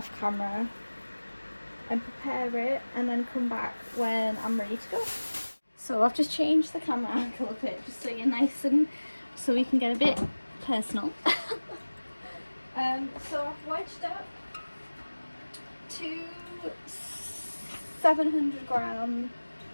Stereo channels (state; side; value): inverted; both; correlation -1.00